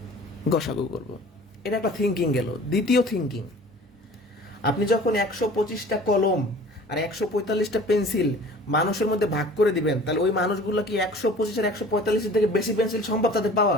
গসাগু করব। এটা একটা থিঙ্কিং গেল। দ্বিতীয় থিঙ্কিং, আপনি যখন 125টা কলম আর 145টা পেন্সিল মানুষের মধ্যে ভাগ করে দিবেন, তাহলে ওই মানুষগুলো কি 125 আর 145 থেকে বেশি পেন্সিল সম্ভব তাদের পাওয়া?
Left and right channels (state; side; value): normal; both; correlation 0.46